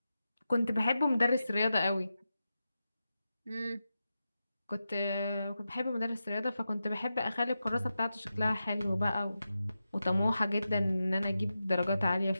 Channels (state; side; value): inverted; both; correlation -0.91